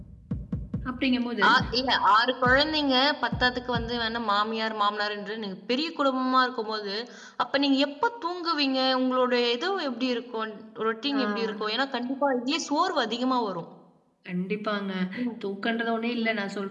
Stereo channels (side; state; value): both; identical; correlation 1.00